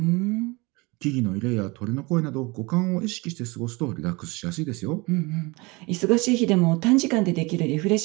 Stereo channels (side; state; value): left; quieter; 25.4 dB